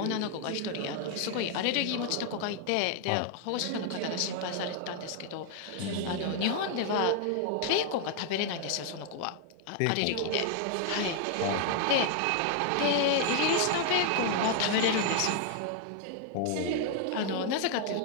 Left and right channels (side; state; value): both; different; correlation 0.00